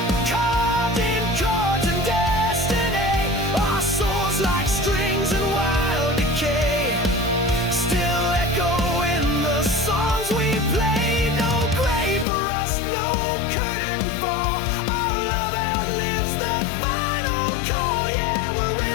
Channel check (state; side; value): drops out; right; at 12.2 s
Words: carved in chords and destiny. Our souls like strings in wild decay, still echo in the songs we play. No grave for us, no curtain fall. Our love outlives the final call. Yeah, we'll